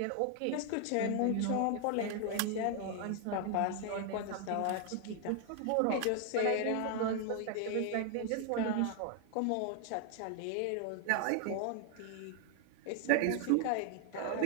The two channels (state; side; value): different; both; correlation 0.00